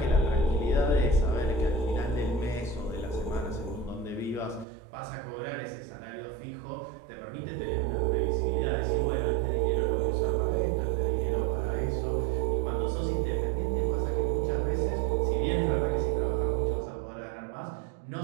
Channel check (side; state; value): left; drops out; at 4.7 s